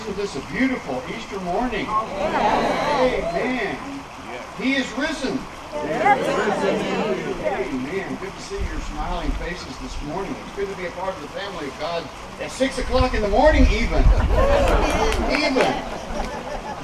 this a beautiful Easter morning. Amen. He is risen. Amen. Good to see your smiling faces this morning. It's good to be a part of the family of God at 6 o'clock in the morning even. Amen.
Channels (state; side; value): identical; both; correlation 1.00